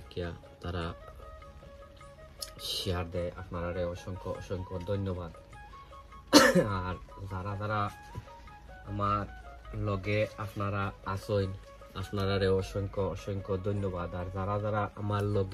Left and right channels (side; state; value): both; identical; correlation 1.00